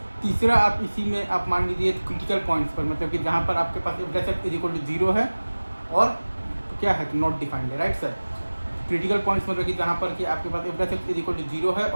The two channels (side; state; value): both; inverted; correlation -1.00